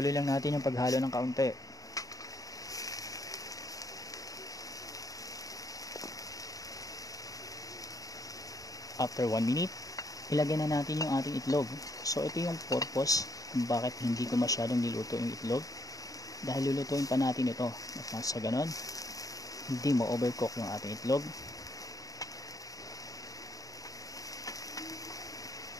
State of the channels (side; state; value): right; late; 0.17 ms